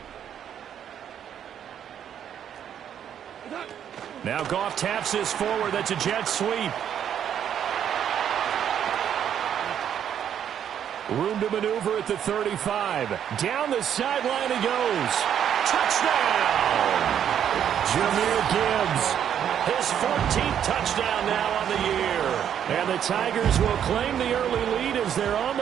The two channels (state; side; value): quieter; left; 9.3 dB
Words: Now Goff taps this forward. That's a jet sweep. Room to maneuver at the 35. Down the sideline he goes. Touchdown! Jahmyr Gibbs. His 14th touchdown now on the year. And the Tigers will claim the early lead as they're on